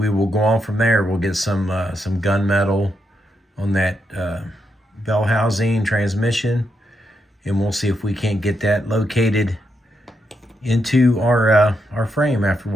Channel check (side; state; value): both; normal; correlation 0.81